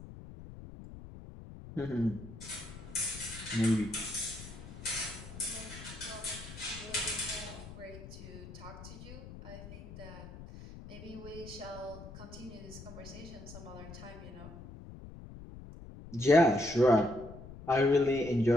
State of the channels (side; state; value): left; noise; rumble, 14 dB below the sound